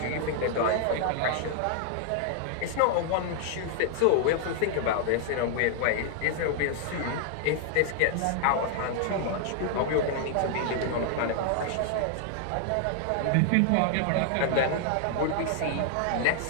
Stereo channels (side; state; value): both; different; correlation 0.00